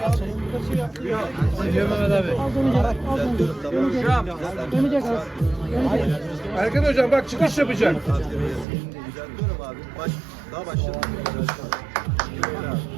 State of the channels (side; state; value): left; drops out; at 8.7 s